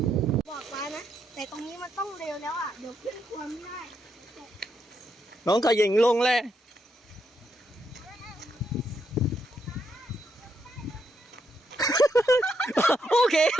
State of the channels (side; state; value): both; normal; correlation 0.78